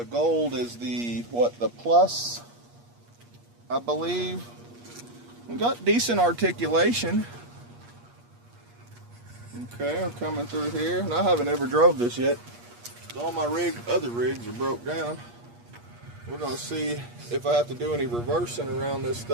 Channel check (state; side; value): late; left; 8.4 ms